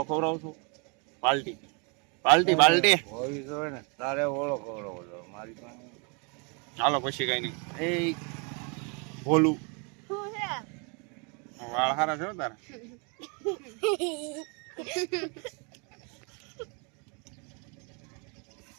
ખવડાવશો? પાલટી પાલટી પાલટી હોવી જોઈએ ને તારે ઓળો ખવડાવો મારી પાસે. હાલો પછી કઈ નહીં. એ ભોલું વાળ હારા છે તારા.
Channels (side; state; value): left; quieter; 34.4 dB